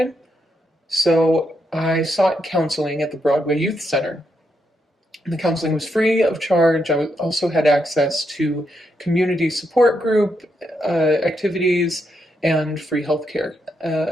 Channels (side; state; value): both; normal; correlation 0.80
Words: So I sought counseling at the Broadway Youth Center. The counseling was free of charge. I also had access to community support group activities and free healthcare.